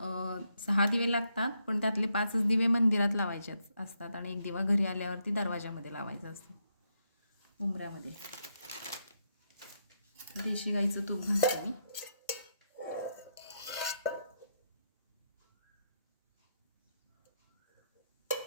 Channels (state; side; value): inverted; both; correlation -0.80